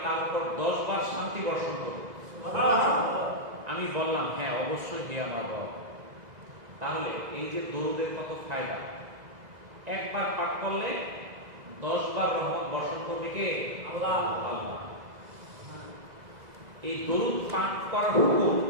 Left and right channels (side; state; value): left; late; 2.0 ms